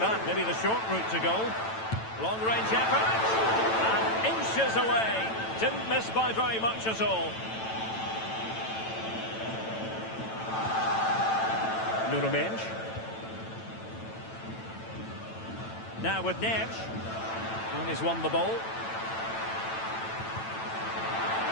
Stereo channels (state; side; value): late; right; 9.0 ms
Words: maybe the short route to goal. Long-range effort. And inches away. Didn't miss by very much at all. Nuno Mendes. Now with Neves. And he's won the ball.